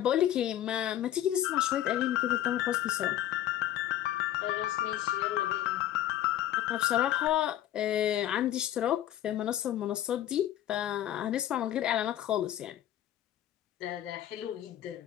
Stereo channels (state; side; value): quieter; right; 12.3 dB